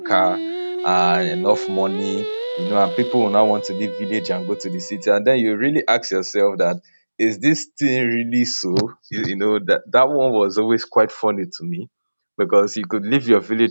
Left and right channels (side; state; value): both; inverted; correlation -1.00